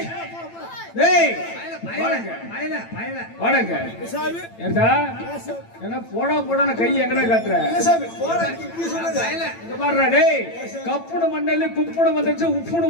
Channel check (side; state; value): right; late; 8.9 ms